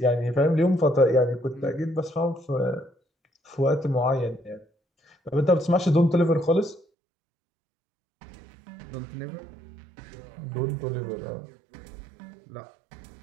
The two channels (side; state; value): left; drops out; at 6.9 s